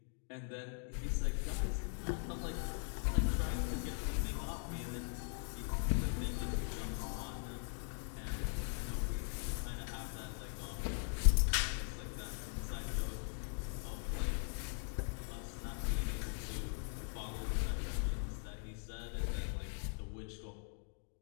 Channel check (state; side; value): silent; right; 51 dB below the other